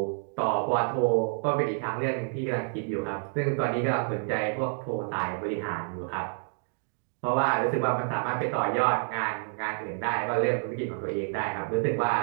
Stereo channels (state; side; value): silent; left; 59 dB below the other